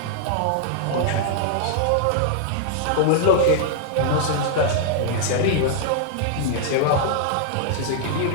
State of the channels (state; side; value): different; both; correlation -0.01